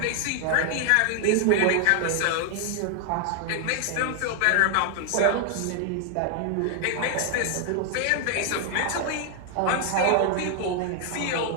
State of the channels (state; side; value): different; both; correlation 0.00